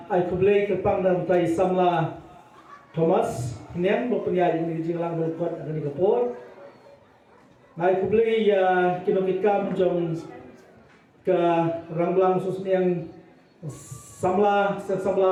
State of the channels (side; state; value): both; identical; correlation 1.00